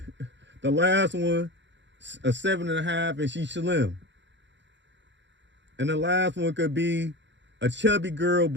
the last one, a 7.5 and she's slim. And the last one could be a chubby girl,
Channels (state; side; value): late; left; 0.52 ms